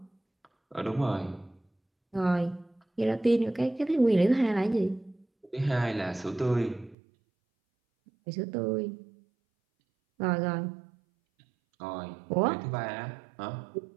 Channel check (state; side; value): drops out; left; at 7.0 s